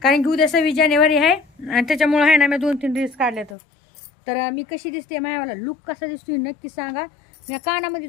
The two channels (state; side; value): drops out; right; at 3.6 s